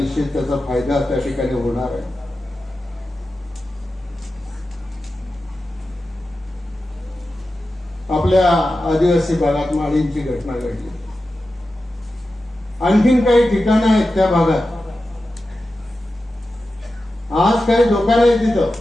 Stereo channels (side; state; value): both; normal; correlation 0.92